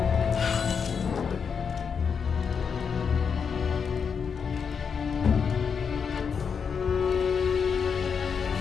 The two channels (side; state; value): right; quieter; 6.3 dB